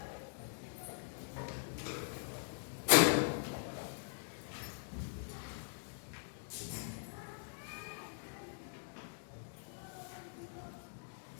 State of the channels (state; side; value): silent; right; digital silence